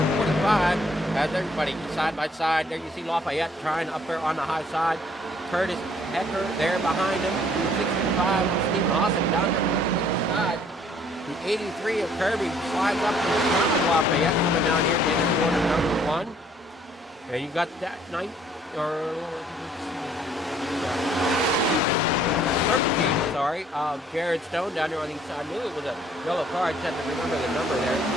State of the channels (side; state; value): both; normal; correlation 0.61